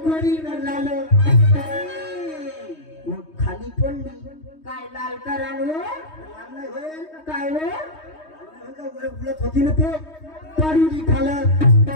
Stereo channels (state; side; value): late; right; 3.2 ms